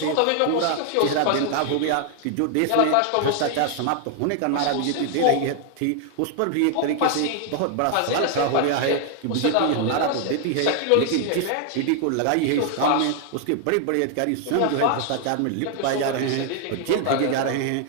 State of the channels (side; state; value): both; different; correlation 0.00